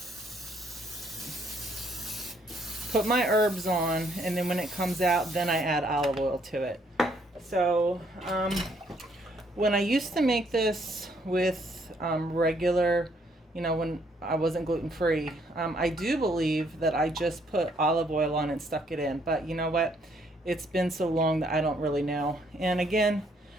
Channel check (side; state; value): both; normal; correlation 0.68